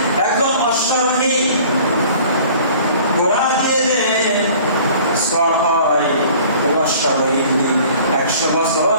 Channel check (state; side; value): inverted; both; correlation -0.49